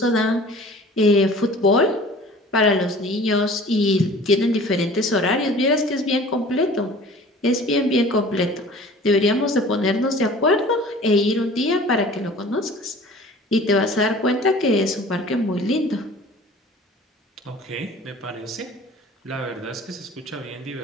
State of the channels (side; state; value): both; normal; correlation 0.45